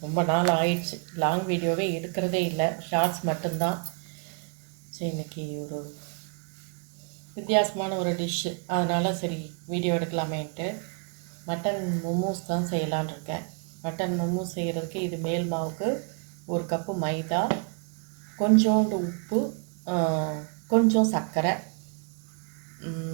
ரொம்ப நாள் ஆயிடுச்சு. லாங் வீடியோவே எடுக்கிறதே இல்லை, ஷார்ட்ஸ் மட்டும்தான். சரி, இன்றைக்கி ஒரு வித்தியாசமான ஒரு டிஷ்ஷு, அதனால் சரி வீடியோ எடுக்கலாமேன்ட்டு மட்டன் மோமோஸ் தான் செய்யலான்னு இருக்கேன். மட்டன் மோமோஸ் செய்கிறதுக்கு இது மேல் மாவுக்கு 1 கப்பு மைதா, கொஞ்சோண்டு உப்பு, கொஞ்சம் சர்க்கரை,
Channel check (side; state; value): left; quieter; 37.6 dB